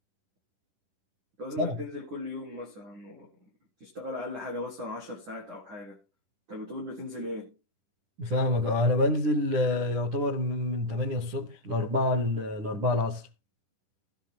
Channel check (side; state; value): left; late; 10 ms